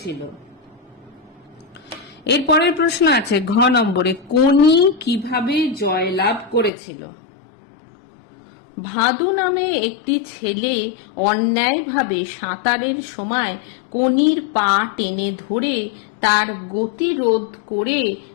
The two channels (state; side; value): drops out; right; at 6.7 s